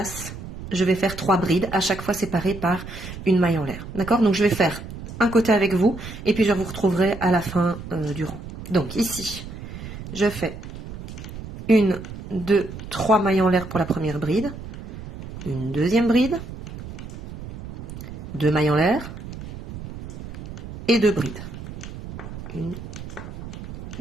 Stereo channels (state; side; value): noise; right; rumble, 11 dB below the sound